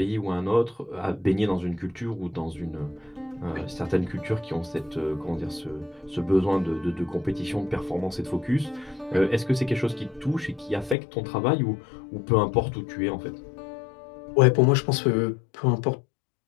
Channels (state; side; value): drops out; right; at 11.0 s